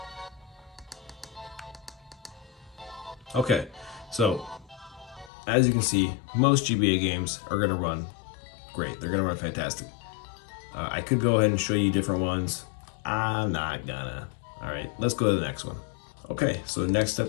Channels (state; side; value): drops out; right; at 5.3 s